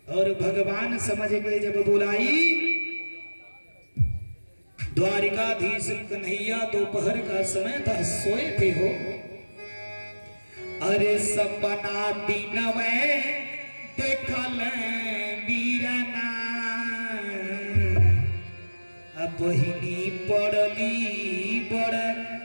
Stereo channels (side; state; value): both; inverted; correlation -1.00